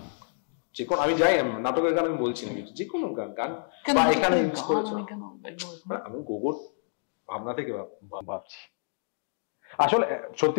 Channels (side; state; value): right; silent; 59 dB below the other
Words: যে কোনো, আমি যাই নাটকের গান আমি বলছি না, যে কোনো গান বা এখানে ইউজ করেছো। আমি গোগোর ভাবনা থেকে ভাবছি। আসলে